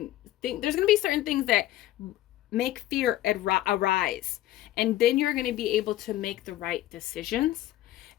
there's going to be certain things that make fear arise. And then you're going to be able to make the right decisions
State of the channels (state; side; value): quieter; right; 14.7 dB